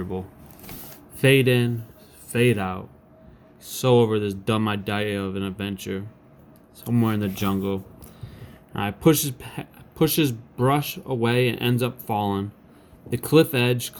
Fade in, fade out. So over this dumb idea of an adventure. Somewhere in the jungle. I pushes brush away and ends up falling. The cliff edge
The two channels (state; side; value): identical; both; correlation 1.00